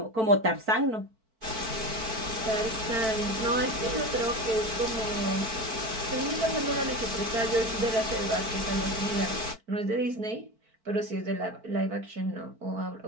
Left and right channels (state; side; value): late; left; 4.5 ms